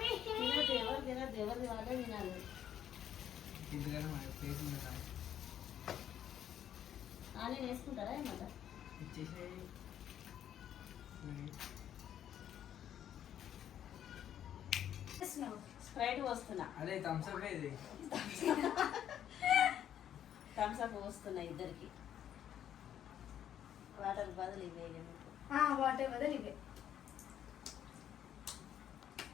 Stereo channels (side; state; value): right; quieter; 10.2 dB